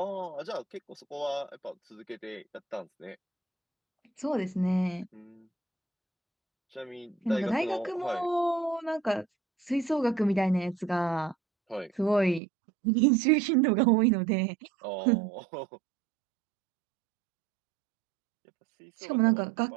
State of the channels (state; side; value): drops out; left; at 12.4 s